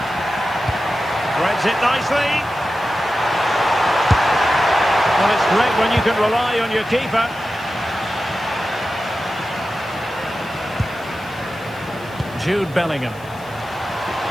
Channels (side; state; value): left; noise; hiss, 25 dB below the sound